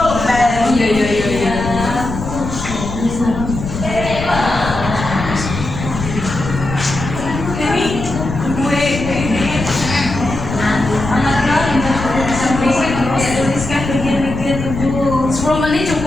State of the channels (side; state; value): left; noise; rumble, 7 dB below the sound